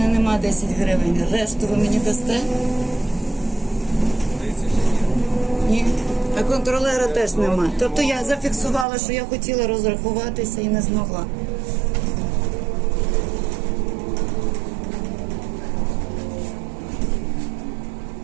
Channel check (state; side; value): drops out; left; at 8.8 s